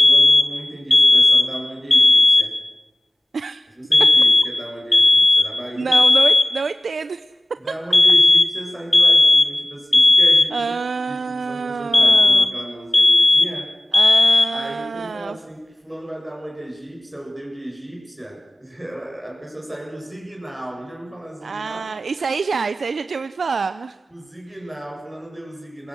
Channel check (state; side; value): normal; both; correlation 0.98